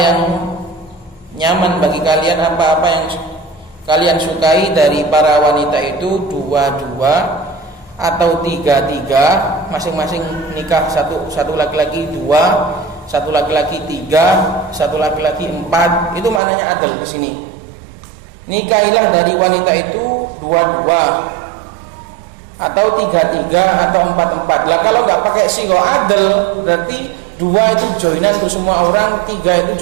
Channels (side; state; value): left; drops out; at 16.4 s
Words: nyaman bagi kalian, apa-apa yang kalian sukai dari para wanita itu dua-dua atau tiga-tiga, masing-masing nikah satu laki-laki dua, satu laki-laki tiga, satu laki-laki empat, itu maknanya adl di sini. Nikahilah dari wanita itu dua-dua atau tiga-tiga atau empat-empat. Lah kalau nggak pakai sigo adl, berarti dua itu joinan untuk semua orang, tiga itu